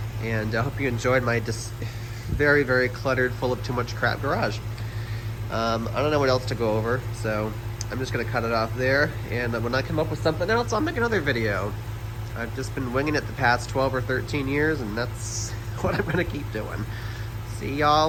And I hope you enjoyed my very, very cluttered, full of too much crap garage. I don't know what else to go over, so I'm just gonna cut it off there. And when I come up with something else, I'll make another video. I've just been winging it the past 12 or 13 years, and that's what I'm gonna keep doing. See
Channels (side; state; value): both; identical; correlation 1.00